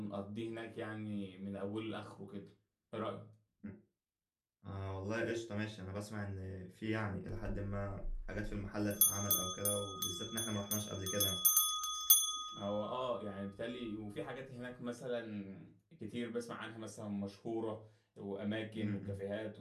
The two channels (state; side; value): identical; both; correlation 1.00